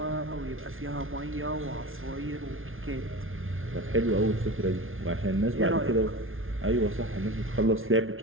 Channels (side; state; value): left; late; 0.59 ms